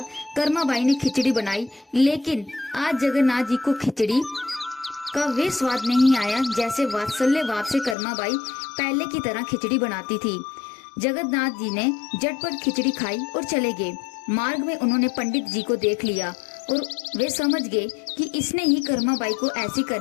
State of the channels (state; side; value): drops out; right; at 8.0 s